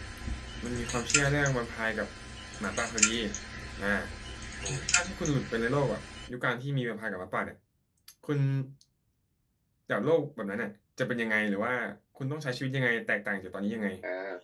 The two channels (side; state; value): both; identical; correlation 1.00